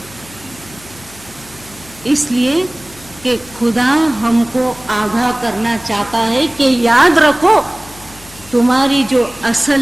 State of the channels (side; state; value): left; noise; hum, 22 dB below the sound